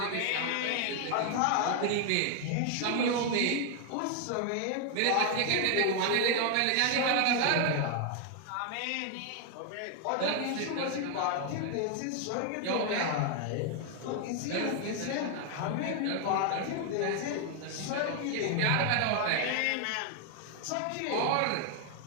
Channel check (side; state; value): both; different; correlation 0.00